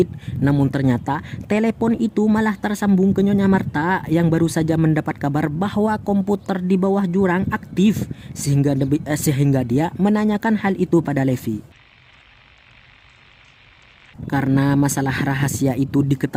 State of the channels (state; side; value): identical; both; correlation 1.00